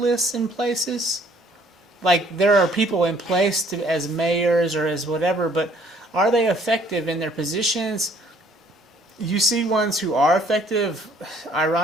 in places. Like there are people in place as mayors or as whatever, but are they effective in their positions? You see ones who are effective,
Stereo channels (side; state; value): both; normal; correlation 0.60